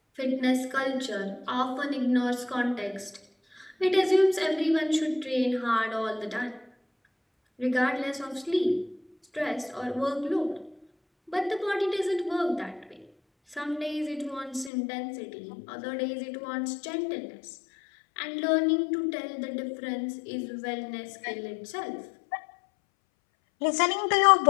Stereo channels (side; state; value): right; drops out; at 14.7 s